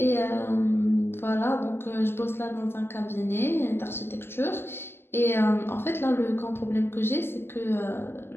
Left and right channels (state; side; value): late; right; 0.11 ms